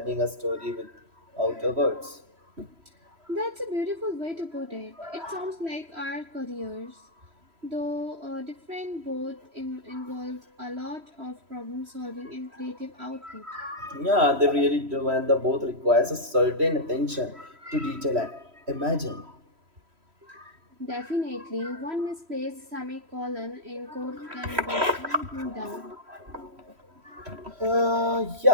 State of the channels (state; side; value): late; left; 3.1 ms